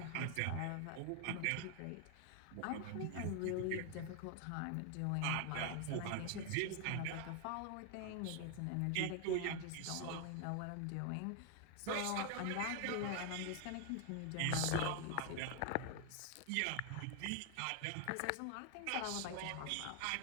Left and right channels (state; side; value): different; both; correlation 0.01